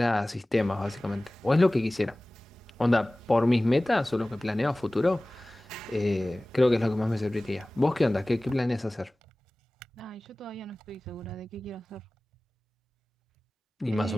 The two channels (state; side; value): normal; both; correlation 0.98